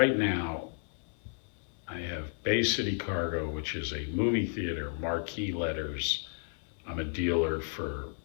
now, I have Bay City Cargo, which is a movie theater, marquee letters. I'm a dealer for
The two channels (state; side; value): silent; right; 55 dB below the other